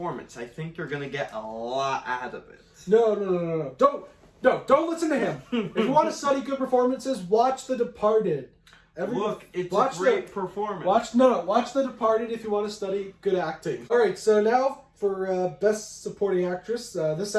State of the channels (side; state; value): both; identical; correlation 1.00